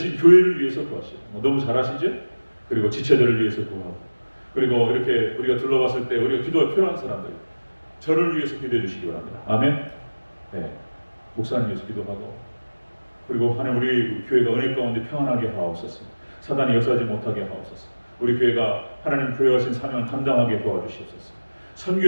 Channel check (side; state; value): both; inverted; correlation -1.00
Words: 교회를 위해서 구하시고 너무 잘하시죠? 그리고 지체들을 위해서 구하고 그리고 이렇게 우리가 둘러봤을 때 우리가 기도가 필요한 사람들 저를 위해서 기도해 주시기 바랍니다. 아멘. 네. 목사님 위해서 기도하고 그리고 하나님 우리 교회가 은혜 가운데 평안하게 하옵소서. 사단이 역사하지 못하게 하옵소서. 우리 교회가 하나님 부여하신 사명을 감당하게 도와주시옵소서.